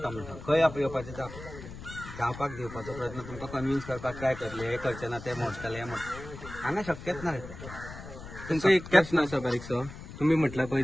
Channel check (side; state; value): left; noise; rumble, 13 dB below the sound